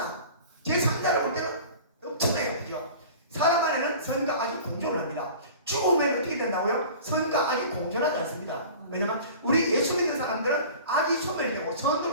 제 3자를 볼 때는 엄청나요. 그죠? 사람 안에는 선과 악이 공존을 합니다. 죽으면 어떻게 된다고요? 선과 악이 공존하지 않습니다. 왜냐면 우리 예수 믿는 사람들은 악이 소멸되고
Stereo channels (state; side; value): inverted; both; correlation -0.41